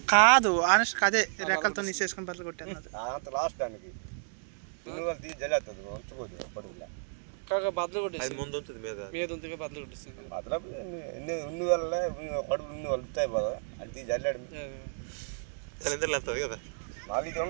కాదు ఆనెస్ట్ అదే రెక్కలతో నీసేసుకుని బదులు కొట్టాను అంత లాస్ట్ దానికి తీసి జల్లేస్తుంది ఉంచుకోదు పడుగులా కాక బదులు కొట్టేసి ముందు ఉంటుంది మీద ఉంటుంది బదులు కొట్టేస్తుంది బదులు ఉన్ని వల్ల కడుపు ఉన్ని వాళ్ళు ఉంటాయి కదా అది తీసి జల్లాడు వెళ్తుంది కదా నాకు ఇది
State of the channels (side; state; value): left; silent; digital silence